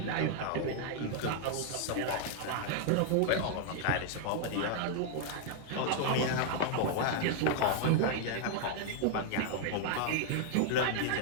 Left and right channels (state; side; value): different; both; correlation -0.01